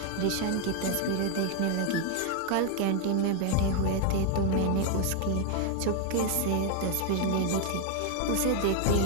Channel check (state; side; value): different; both; correlation 0.00